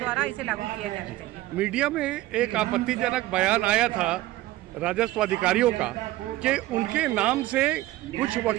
इसे लागू किया जाना चाहिए। मीडिया में एक आपत्तिजनक बयान आया था राजस्व अधिकारियों का कि उनके नाम से कुछ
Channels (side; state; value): left; quieter; 16.8 dB